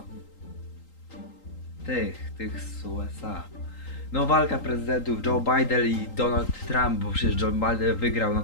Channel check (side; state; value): right; late; 3.8 ms